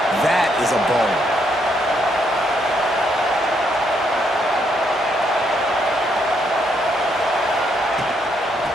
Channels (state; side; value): normal; both; correlation 0.74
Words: That is a ball.